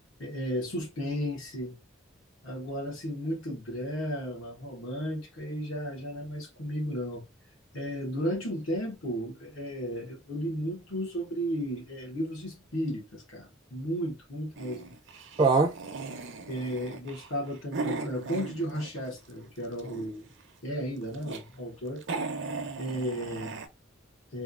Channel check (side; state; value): both; normal; correlation 0.39